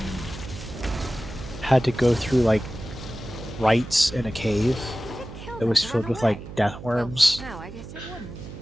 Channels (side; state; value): right; noise; hum, 13 dB below the sound